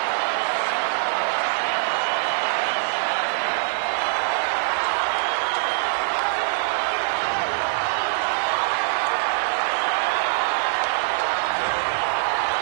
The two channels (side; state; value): left; silent; digital silence